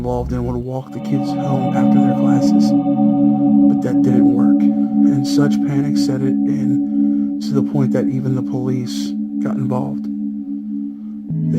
and would walk the kids home after their classes. But that didn't work, and such panic set it in to the point that even the police got involved.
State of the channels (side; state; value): both; identical; correlation 1.00